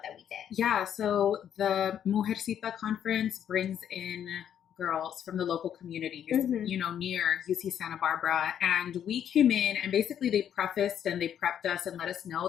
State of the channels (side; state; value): right; quieter; 9.4 dB